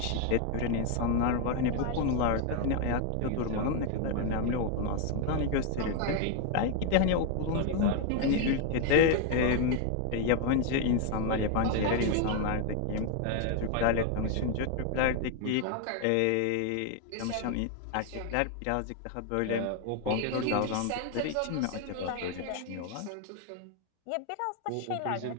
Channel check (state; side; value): different; both; correlation 0.01